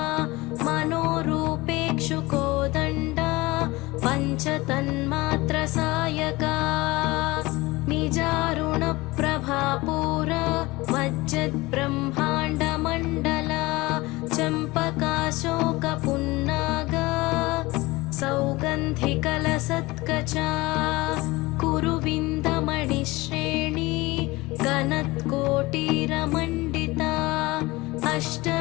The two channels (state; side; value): quieter; right; 21.4 dB